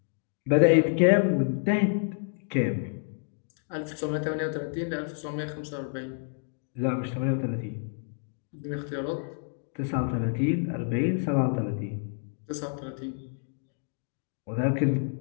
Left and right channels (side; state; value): right; silent; digital silence